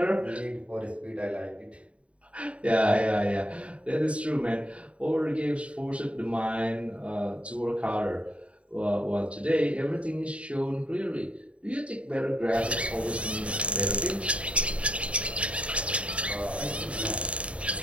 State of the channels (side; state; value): left; late; 0.062 ms